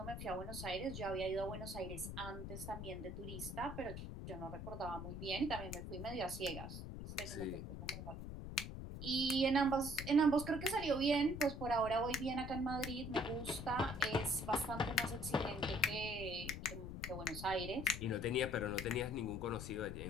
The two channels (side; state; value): left; noise; rumble, 7 dB below the sound